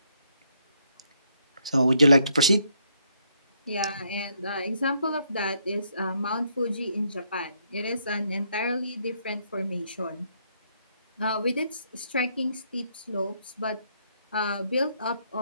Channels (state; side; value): inverted; both; correlation -0.73